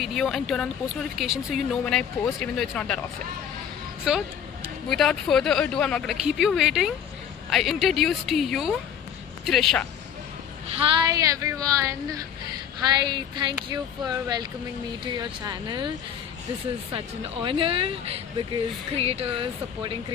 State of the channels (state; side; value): quieter; right; 8.6 dB